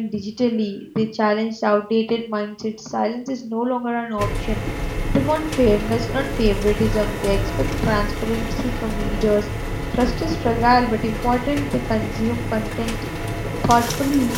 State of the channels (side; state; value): both; identical; correlation 1.00